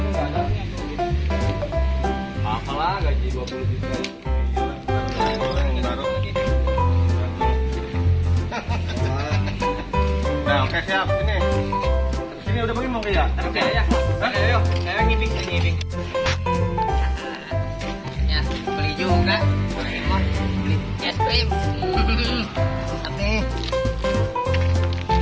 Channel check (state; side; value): identical; both; correlation 1.00